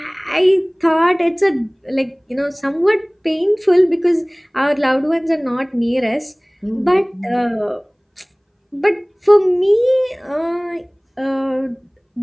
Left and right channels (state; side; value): identical; both; correlation 1.00